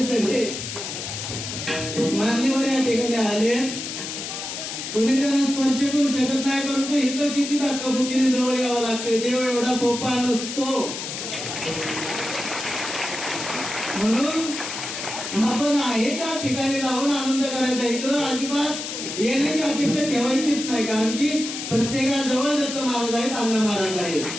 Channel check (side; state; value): left; noise; hiss, 6 dB below the sound